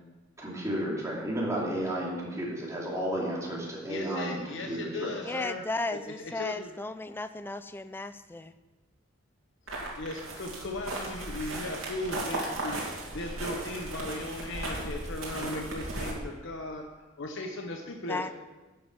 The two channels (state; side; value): normal; both; correlation 0.38